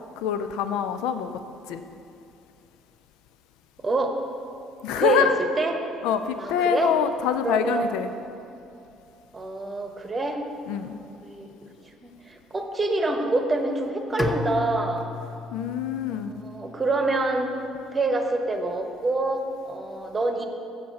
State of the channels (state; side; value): normal; both; correlation 0.57